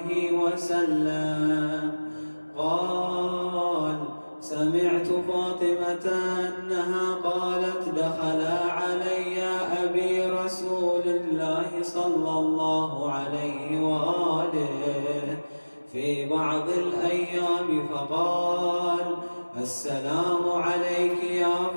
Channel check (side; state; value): both; inverted; correlation -1.00